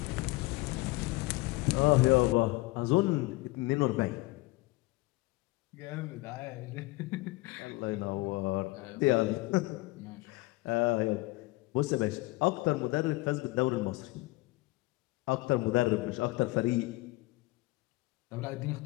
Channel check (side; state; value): right; quieter; 21.8 dB